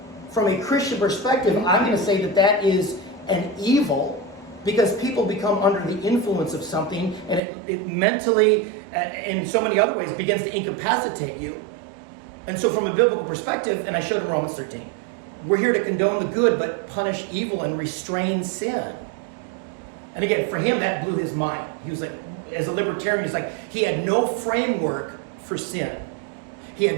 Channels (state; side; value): drops out; left; at 7.4 s